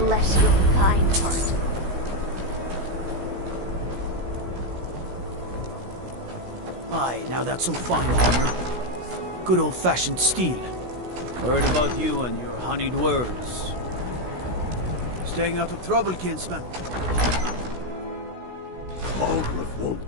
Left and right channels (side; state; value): left; late; 16 ms